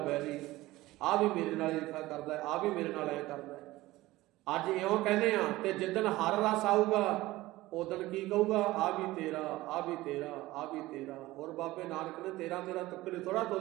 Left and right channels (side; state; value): left; quieter; 18.0 dB